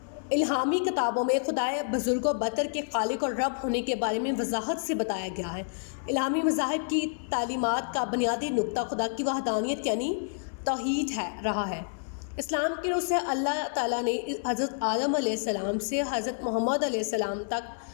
इल्हामी किताबों में खुदाए बुज़ुर्ग व बतर के खालिक और रब होने के बारे में वजाहत से बताया गया है। इल्हामी मज़ाहिब की तालीमात का बुनियादी नुक्ता खुदा की वहदानियत यानी तौहीद रहा है। इस्लाम की रूह से अल्लाह ताला ने हज़रत आदम अलैहिस्सलाम से हज़रत मोहम्मद अलैहिस्सलाम तक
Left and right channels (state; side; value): silent; right; 59 dB below the other